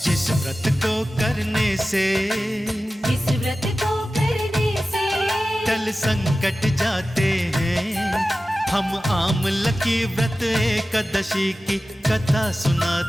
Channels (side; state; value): both; normal; correlation 0.95